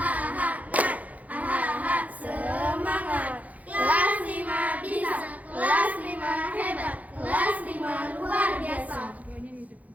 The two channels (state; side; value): late; left; 0.074 ms